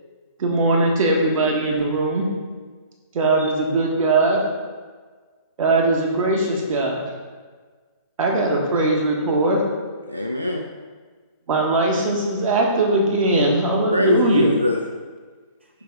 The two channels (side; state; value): both; inverted; correlation -0.46